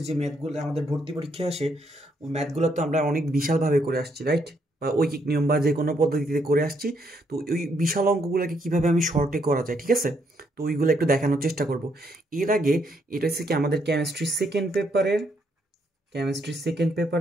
যে ম্যাথগুলো আমাদের ভর্তি পরীক্ষায় আসে, ওই ম্যাথগুলো তো আমরা অনেক বিশালভাবে করে আসছি, রাইট? বা ঐকিক নিয়ম বা যে কোনো পদ্ধতিতে করে আসছি। তো ওই বিশাল অঙ্কগুলোকে কিভাবে আমি শর্টে করা যায়, ঠিক আছে? তো ওইগুলো একটু দেখানোর চেষ্টা করব। এর আগে এটা হচ্ছে কি আমাদের কেমিস্ট্রি সেকেন্ড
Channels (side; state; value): both; normal; correlation 0.74